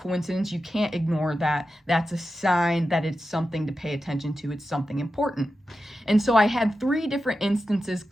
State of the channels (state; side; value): normal; both; correlation 0.91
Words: You can't ignore that. That's a sign that it's something to pay attention to. It's something important. And so I had 3 different instances